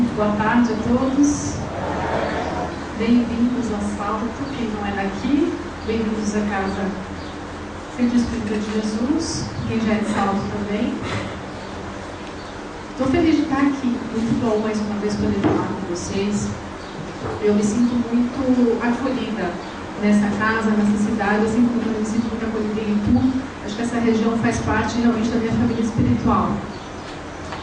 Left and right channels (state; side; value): identical; both; correlation 1.00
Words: Boa tarde a todos. Bem-vindos ao Salto, quem não é daqui. Bem-vindos à casa Centro Espírita de Jesus, quem já é de Salto também. Estou feliz de estar aqui, muito bom mais uma vez poder falar com vocês. Eu me sinto muito acolhida nessa casa, nessa cidade, assim como eu me sinto muito acolhida em Itu. Acho que essa região faz parte realmente da minha família espiritual.